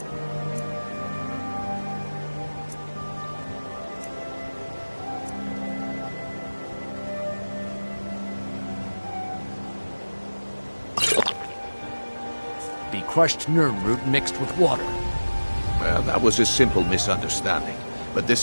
crushed nerve root mixed with water. Well, that was a simple misunderstanding. But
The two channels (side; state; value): both; inverted; correlation -1.00